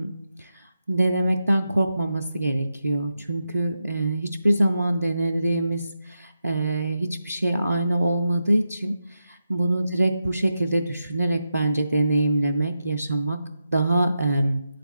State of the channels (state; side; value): inverted; both; correlation -0.87